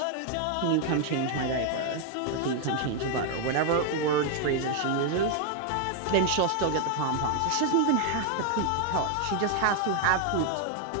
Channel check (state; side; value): different; both; correlation 0.00